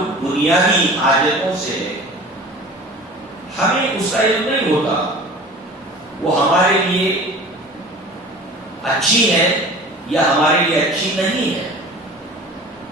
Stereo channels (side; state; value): both; normal; correlation 0.41